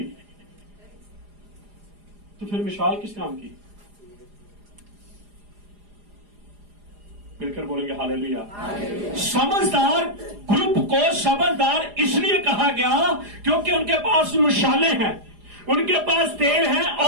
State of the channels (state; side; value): late; left; 4.9 ms